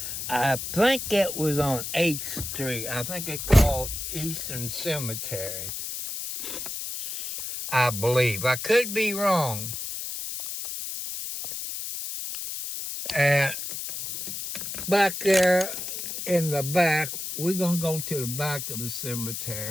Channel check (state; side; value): noise; left; hiss, 6 dB below the sound